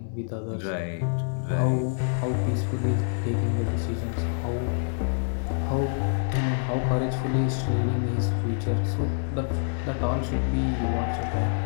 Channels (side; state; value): right; silent; 60 dB below the other